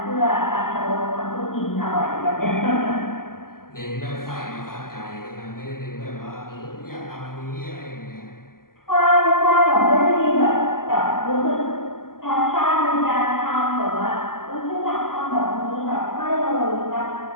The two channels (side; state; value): right; late; 0.92 ms